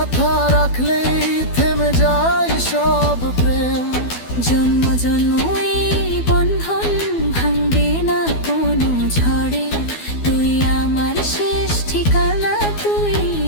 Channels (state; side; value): late; right; 12 ms